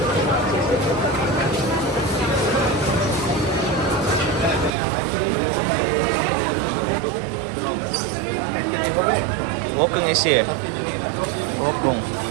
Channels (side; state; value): left; drops out; at 4.7 s